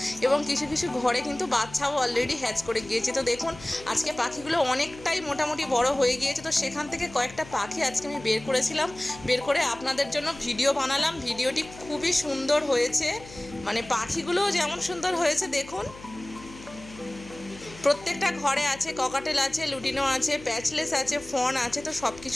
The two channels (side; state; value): left; noise; hum, 18 dB below the sound